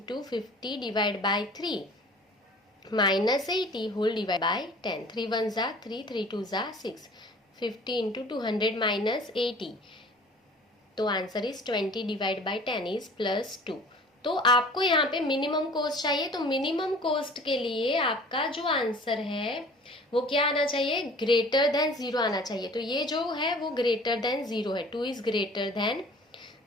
50 divide by 3 minus 80 whole divide by 10। 3 1 जा 3, 3 2 जा 6, 50 इंटू 200 माइनस 80, तो answer is 20 divide by 10 is +2। तो आपको यहाँ पे मिनिमम कॉस्ट चाहिए, तो मिनिमम कॉस्ट के लिए आपका जो आंसर है वो क्या आना चाहिए, ग्रेटर देन 0 आना चाहिए। तो ये जो है वो ग्रेटर देन 0 है, 2 इज ग्रेटर देन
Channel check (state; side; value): normal; both; correlation 0.47